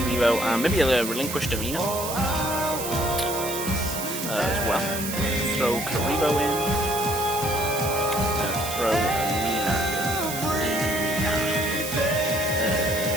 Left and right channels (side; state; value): right; noise; hiss, 6 dB below the sound